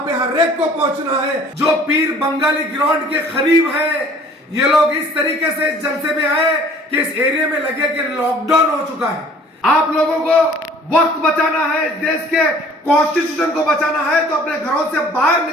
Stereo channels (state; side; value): normal; both; correlation 0.52